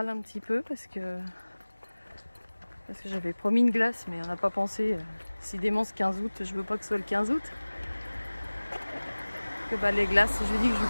un petit peu parce que j'avais promis une glace, mais on n'a pas pensé. Si démence 15 août, je veux pas que ce soit le 15 août. Que bah, les glaces, je lui dis que je lui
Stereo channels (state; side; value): inverted; both; correlation -1.00